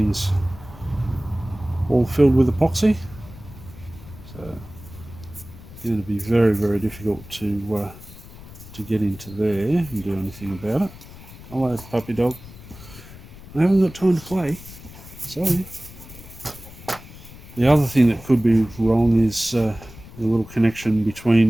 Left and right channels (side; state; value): left; noise; rumble, 17 dB below the sound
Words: all filled with epoxy, so it's going to be very, very difficult to get into there and do anything about it. Hello, puppy dog. I haven't got time to play. Sorry. The other thing that could be wrong is the little connection